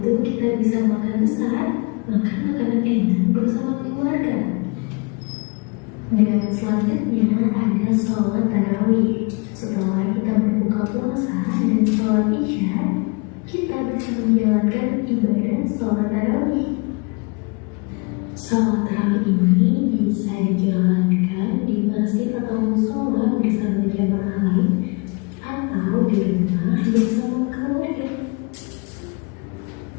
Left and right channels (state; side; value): quieter; right; 30.8 dB